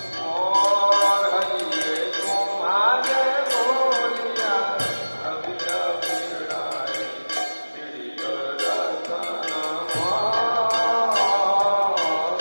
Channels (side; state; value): both; inverted; correlation -1.00